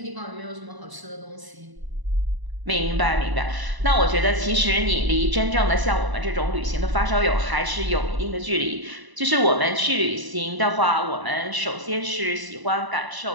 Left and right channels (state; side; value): late; left; 1.0 ms